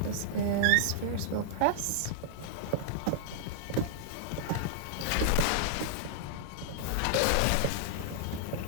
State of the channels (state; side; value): different; both; correlation -0.01